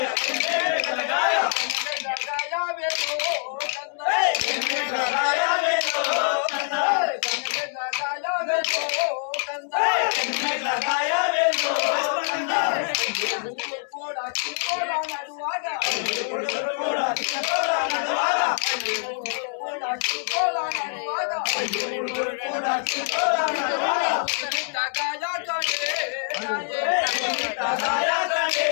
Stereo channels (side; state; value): right; silent; 62 dB below the other